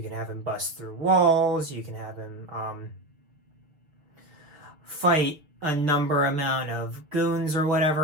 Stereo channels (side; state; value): left; late; 6.6 ms